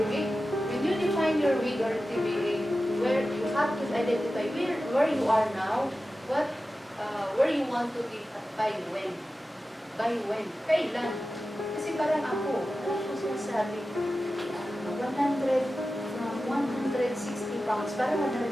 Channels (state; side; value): normal; both; correlation 0.94